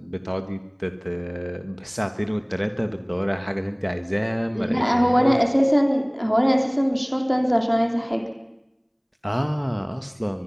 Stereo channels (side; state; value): both; identical; correlation 1.00